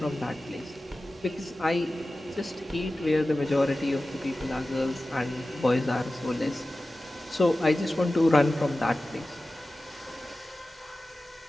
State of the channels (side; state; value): both; normal; correlation 0.95